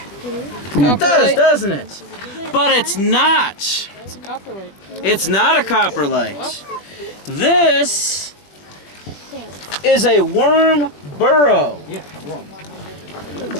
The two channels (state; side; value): late; right; 20 ms